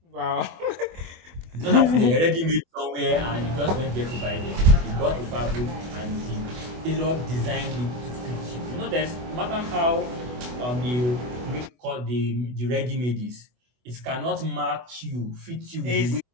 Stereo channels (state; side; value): late; left; 24 ms